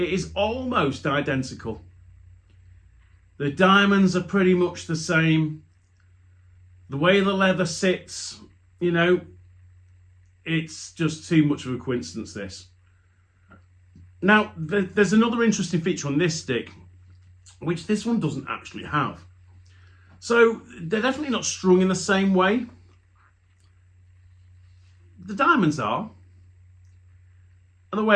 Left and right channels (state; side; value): identical; both; correlation 1.00